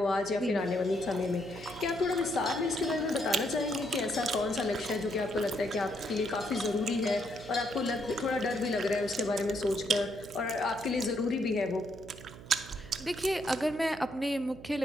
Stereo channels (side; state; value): right; noise; hum, 17 dB below the sound